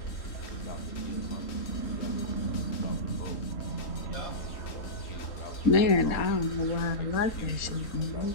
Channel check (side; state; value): right; late; 3.8 ms